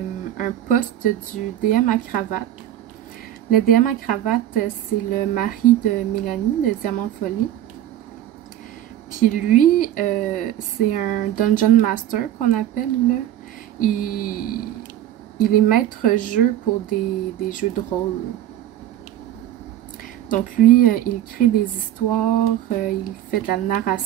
post du DM à cravate. Le DM à cravate, c'est le mari de Mélanie, de Diamant Folie. Puis lui, c'est un Dungeon Master qu'on appelle, là. Il est maître jeu pour des jeux de rôle. Donc lui, il crée des histoires, il fait de la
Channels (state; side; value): quieter; left; 12.1 dB